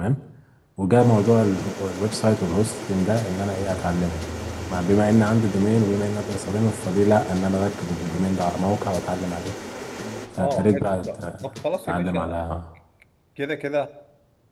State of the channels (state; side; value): identical; both; correlation 1.00